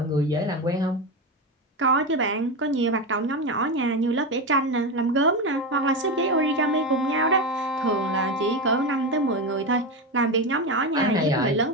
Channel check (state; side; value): normal; both; correlation 0.16